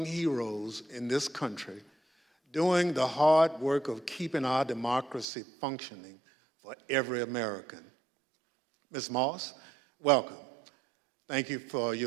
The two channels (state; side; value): drops out; left; at 5.2 s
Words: heroes in this country, doing the hard work of keeping our democracy functioning for every American. Ms. Moss, welcome. Thank you for